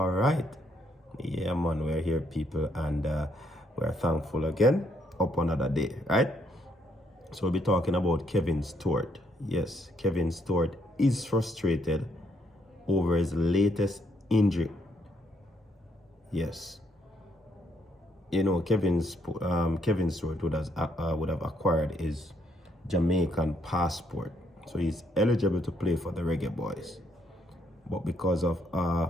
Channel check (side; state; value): both; normal; correlation 0.72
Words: right. Yeah, man, we're here, people, and we're thankful again up another day, right? So we'll be talking about Kevin Stewart. Yes, Kevin Stewart is frustrated over his latest injury. Yes. You know, Kevin Stewart would have acquired his Jamaican passport, so he's eligible to play for the Reggae Boyz. But because of